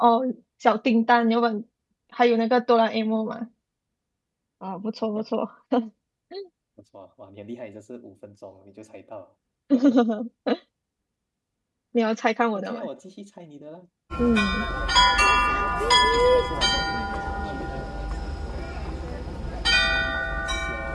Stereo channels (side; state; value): both; identical; correlation 1.00